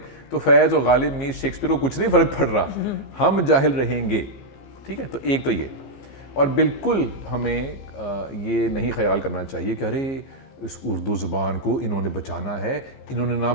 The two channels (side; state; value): right; late; 15 ms